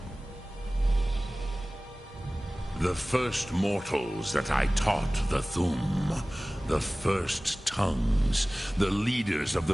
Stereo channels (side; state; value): both; normal; correlation 0.98